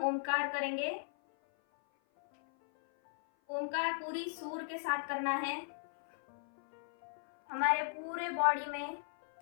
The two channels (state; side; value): silent; right; 53 dB below the other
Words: ओमकार करेंगे। ओमकार पूरी सुर के साथ करना है। हमारे पूरे बॉडी में